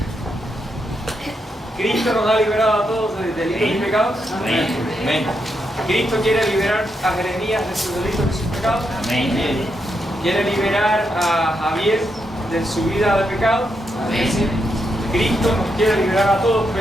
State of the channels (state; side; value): normal; both; correlation 0.82